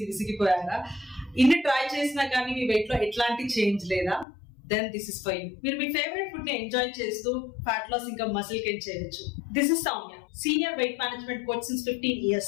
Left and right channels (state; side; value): drops out; right; at 4.2 s